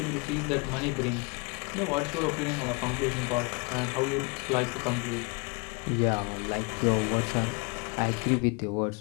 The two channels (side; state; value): right; quieter; 30.7 dB